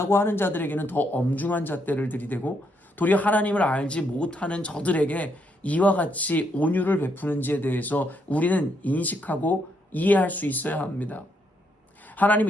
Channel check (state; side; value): normal; both; correlation 0.76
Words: 하는 자들에게는 더 엄중한 잣대를 들이대고 도리어 하나님을 알지 못하는 저들에게 이와 같이 온유를 베푸는지에 대해서 우리는 인식하고 이해할 수 있어야 합니다.